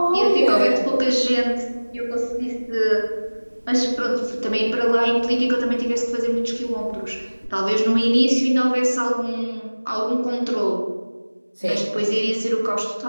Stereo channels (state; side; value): inverted; both; correlation -1.00